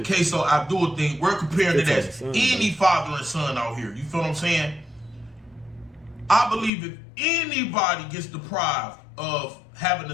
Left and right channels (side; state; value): right; drops out; at 6.7 s